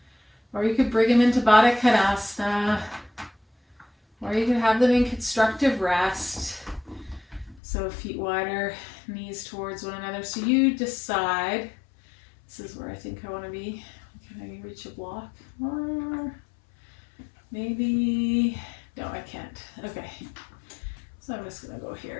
or you could bring them into Baddha Konasana, or you could have them in constructive rest. So feet wider, knees towards one another. So you decide, this is where I think I want to be. Can I reach a block? Or maybe, no, I can't. Okay, so I'm just gonna go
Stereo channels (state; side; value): drops out; right; at 7.6 s